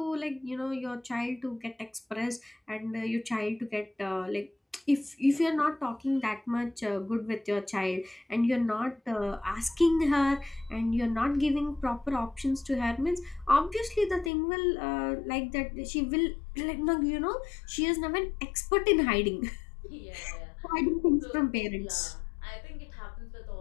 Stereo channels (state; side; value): drops out; right; at 14.3 s